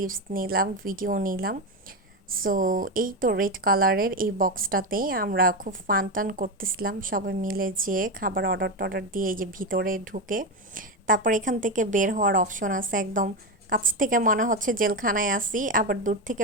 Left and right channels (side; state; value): both; normal; correlation 0.13